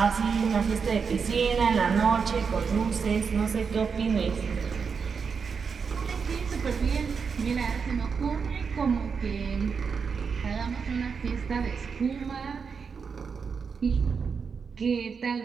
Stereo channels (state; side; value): quieter; left; 5.8 dB